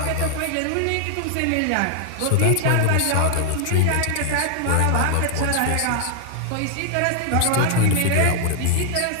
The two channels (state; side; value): different; both; correlation 0.00